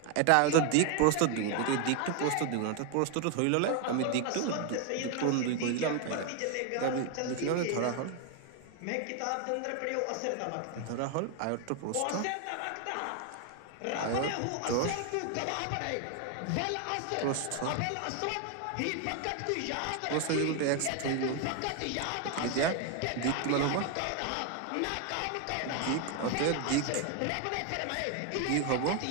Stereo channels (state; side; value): different; both; correlation 0.01